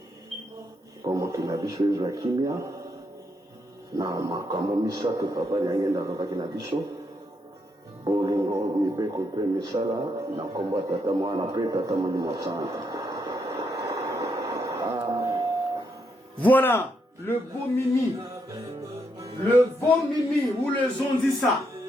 mpo mokili na biso ezwa kimia na makambo misato papa Nyangenda alobaki na biso. Bolingo mibeko mpe misala na kombo ya tata mwana mpe tata molimo santu. Voilà, le beau Mimi. Le beau Mimi, ou le Zonzissa.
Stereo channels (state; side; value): normal; both; correlation 0.78